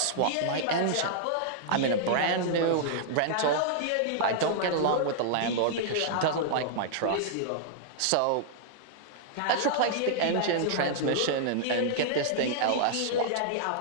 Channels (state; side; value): different; both; correlation -0.01